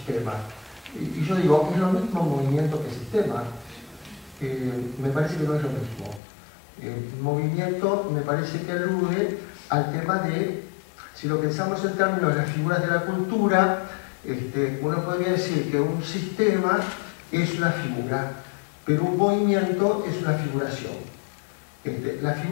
Y yo digo, ¿es lo mismo movimiento que sistema? Me parece que no es lo mismo. Movimiento me parece que alude al tema de, si lo pensamos en términos de las figuras de la cultura, uno podría decir que un sistema es una figura, pero un movimiento es una figuración. La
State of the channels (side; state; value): right; drops out; at 6.2 s